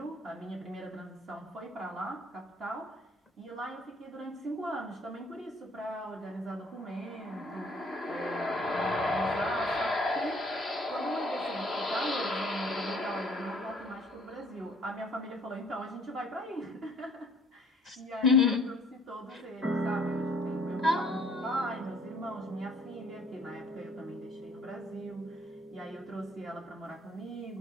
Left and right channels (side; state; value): both; normal; correlation 0.59